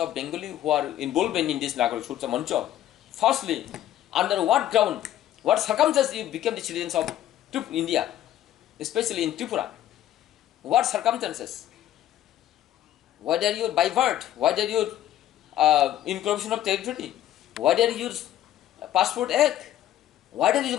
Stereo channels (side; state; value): right; quieter; 12.4 dB